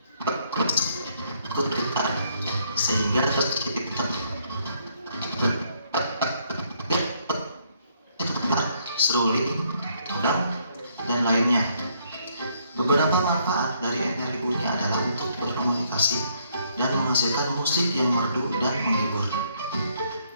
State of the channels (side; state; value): both; inverted; correlation -0.69